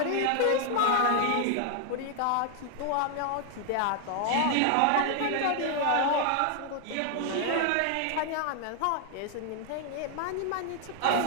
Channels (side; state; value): both; different; correlation 0.00